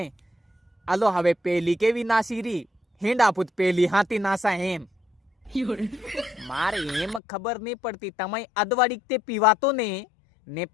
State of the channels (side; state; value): right; drops out; at 7.2 s